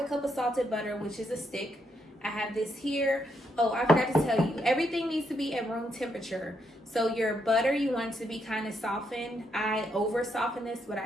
cup of salted butter, which is a stick. I have this here. Oh, I forgot to tell you, everything needs to be at room temperature. So your butter, you want it to be kind of softened. I over softened this, but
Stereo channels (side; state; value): both; normal; correlation 0.78